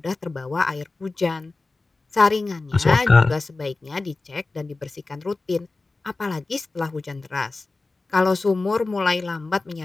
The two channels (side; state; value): right; quieter; 3.5 dB